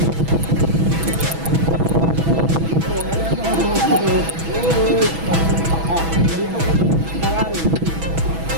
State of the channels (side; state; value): left; late; 6.1 ms